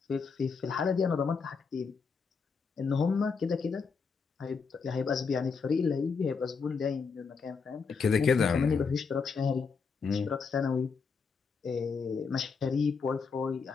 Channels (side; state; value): right; quieter; 5.3 dB